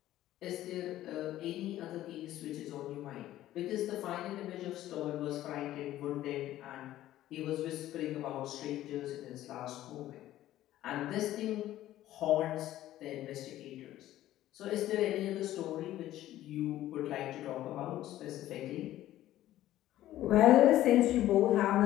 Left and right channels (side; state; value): right; quieter; 13.9 dB